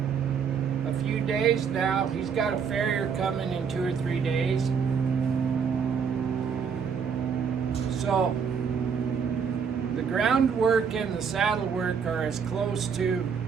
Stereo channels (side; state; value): left; quieter; 6.5 dB